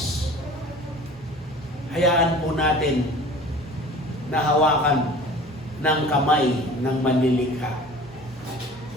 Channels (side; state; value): both; normal; correlation 0.43